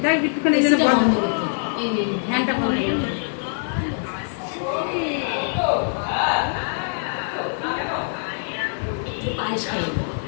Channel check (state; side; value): silent; right; 56 dB below the other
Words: তাই একটুখানি এই জন্য বন্ধ করতে, এই ফ্যানটা বন্ধ করতে। পায়েস খাই